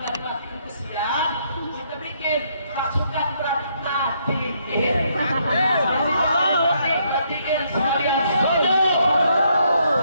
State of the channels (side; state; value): both; inverted; correlation -0.72